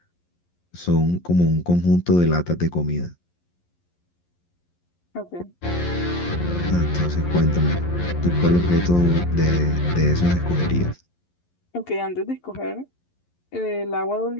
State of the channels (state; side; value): late; right; 11 ms